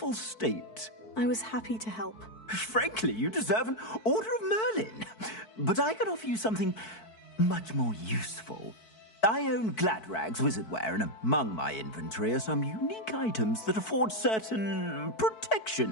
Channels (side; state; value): right; late; 4.6 ms